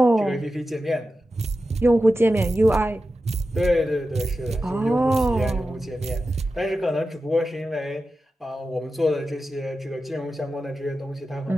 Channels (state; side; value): normal; both; correlation 0.92